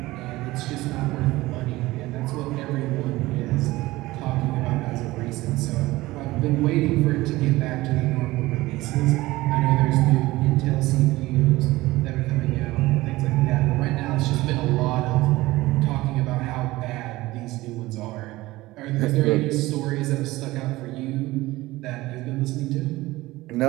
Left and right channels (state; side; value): quieter; left; 18.8 dB